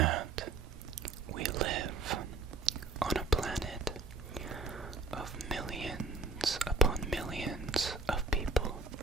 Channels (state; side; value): quieter; left; 3.6 dB